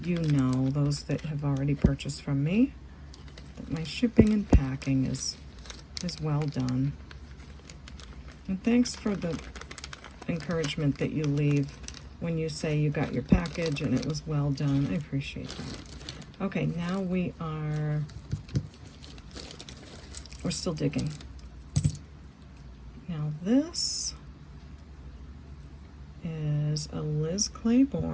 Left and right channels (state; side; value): identical; both; correlation 1.00